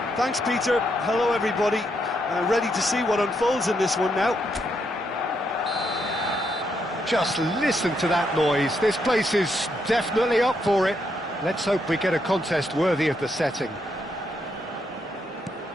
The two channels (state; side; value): normal; both; correlation 0.78